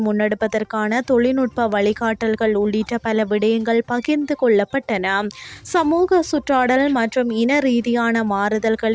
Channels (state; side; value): identical; both; correlation 1.00